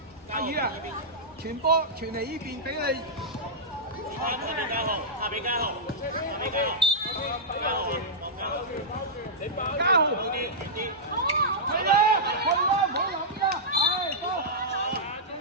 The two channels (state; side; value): normal; both; correlation -0.12